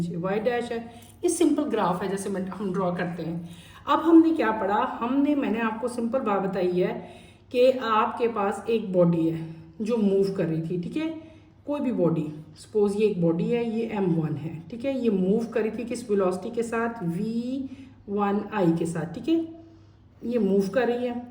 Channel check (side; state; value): both; identical; correlation 1.00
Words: वाई डैश है। ये सिंपल ग्राफ है जैसे हम ड्रॉ करते हैं। अब हमने क्या पढ़ा? मैंने आपको सिंपल बात बताई है कि आपके पास एक बॉडी है जो मूव कर रही थी। ठीक है, कोई भी बॉडी, सपोज ये एक बॉडी है, ये m1 है। ठीक है, ये मूव कर रही थी किस वेलोसिटी के साथ? v1i के साथ। ठीक है, ये मूव कर रही है।